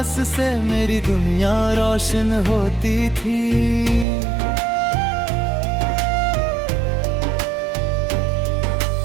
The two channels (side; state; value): left; drops out; at 4.0 s